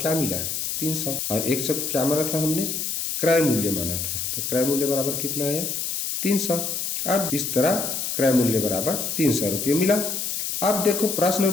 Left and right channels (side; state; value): left; noise; hiss, 2 dB below the sound